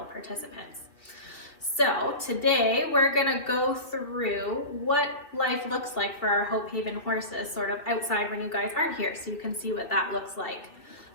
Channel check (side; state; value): right; late; 2.5 ms